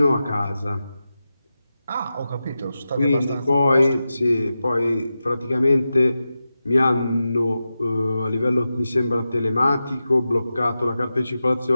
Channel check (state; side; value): inverted; both; correlation -0.92